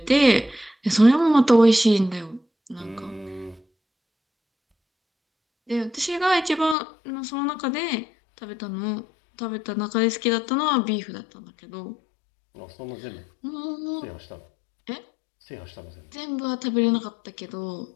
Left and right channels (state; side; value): drops out; right; at 6.8 s